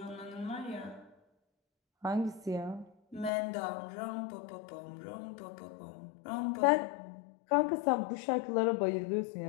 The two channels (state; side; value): drops out; right; at 3.3 s